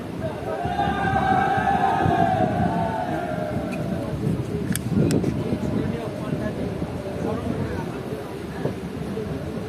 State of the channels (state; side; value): identical; both; correlation 1.00